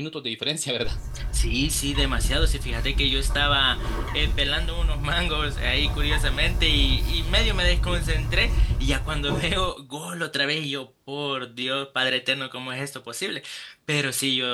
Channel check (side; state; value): both; identical; correlation 1.00